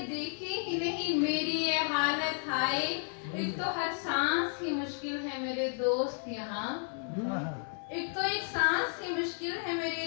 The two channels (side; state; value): right; silent; 56 dB below the other